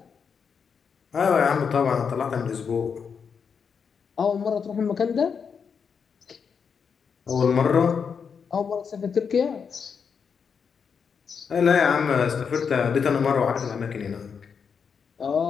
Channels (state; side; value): quieter; right; 6.4 dB